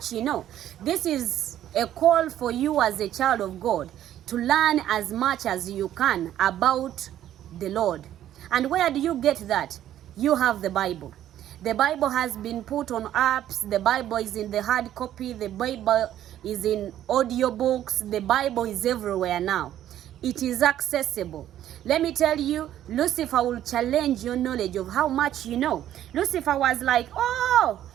you know. This is a call for you as a child of God to learn as much as you can about the Lord. And where do you get that? You have the Bible. The Bible has been put on apps. The Bible is in the hard copy. The Bible is in audiobooks. The Bible is everywhere now. It is accessible. Let me tell you, Lucifer will challenge your knowledge of how much you know. Lucifer was like, oh,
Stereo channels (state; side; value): quieter; left; 11.8 dB